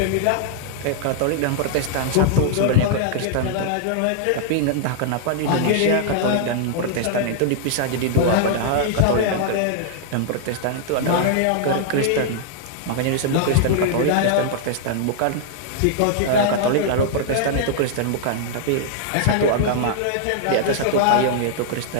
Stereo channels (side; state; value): both; different; correlation -0.01